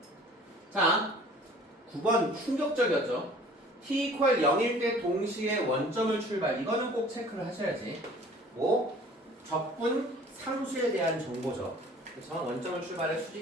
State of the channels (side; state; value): both; normal; correlation 0.49